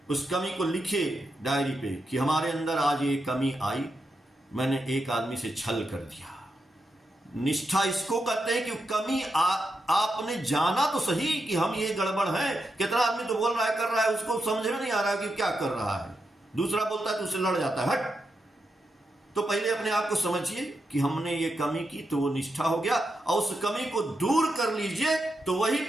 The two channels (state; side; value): normal; both; correlation 0.85